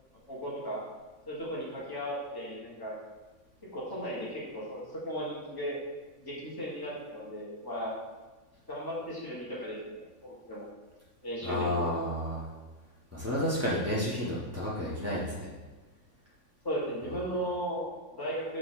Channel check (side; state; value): left; late; 3.5 ms